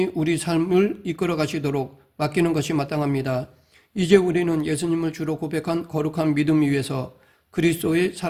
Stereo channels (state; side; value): identical; both; correlation 1.00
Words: 우리 삶을 이끌어 가시도록 맡기는 것이 마땅합니다. 이제 우리는 예수님을 주로 고백한 거룩한 믿음 위에서 그리스도의